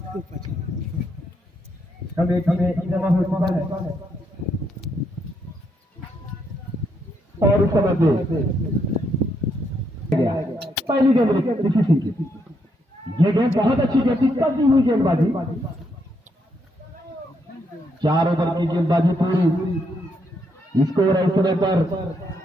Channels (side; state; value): both; normal; correlation 0.77